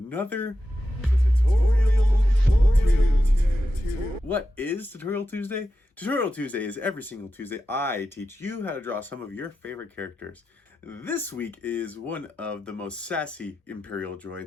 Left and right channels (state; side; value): normal; both; correlation 0.90